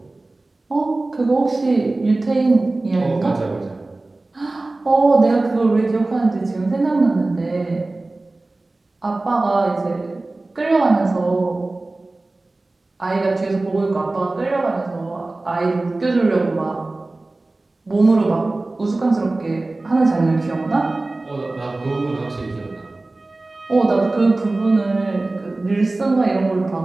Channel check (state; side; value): quieter; left; 3.0 dB